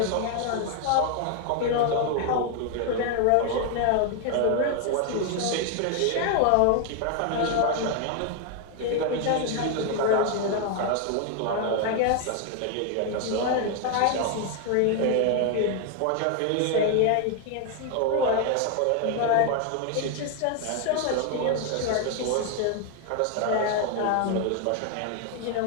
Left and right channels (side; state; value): both; different; correlation 0.01